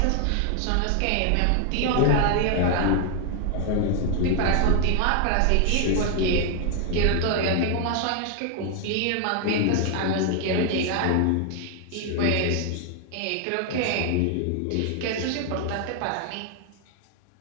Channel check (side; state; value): both; different; correlation 0.00